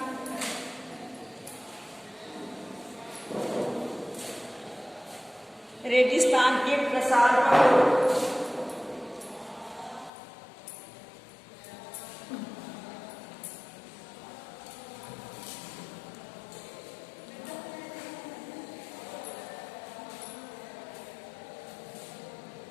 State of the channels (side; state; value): right; drops out; at 10.1 s